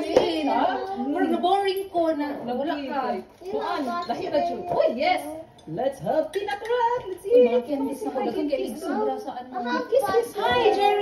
na boring ko na. Nawala ka. Kuan, lahi na siya. Oh, yes! Let's have peanut bread! Let's eat! Mga candies na kagagang candies sobra sa ano. Kiss! Hi,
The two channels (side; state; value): both; identical; correlation 1.00